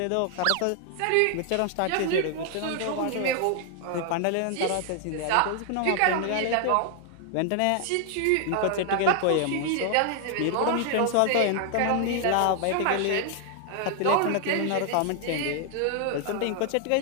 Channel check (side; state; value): both; different; correlation 0.00